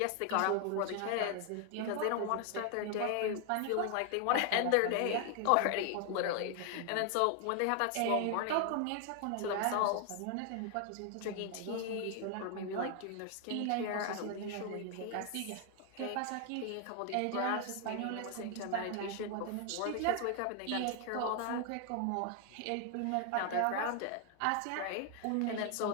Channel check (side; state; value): both; different; correlation 0.00